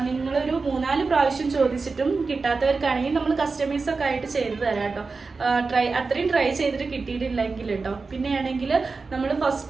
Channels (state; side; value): quieter; left; 4.2 dB